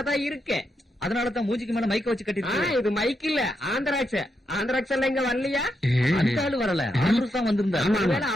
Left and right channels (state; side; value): normal; both; correlation 0.83